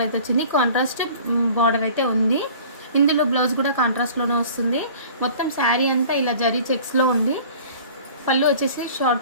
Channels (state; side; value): inverted; both; correlation -0.46